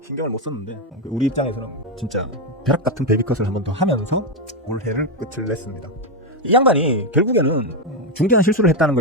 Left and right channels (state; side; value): normal; both; correlation 0.06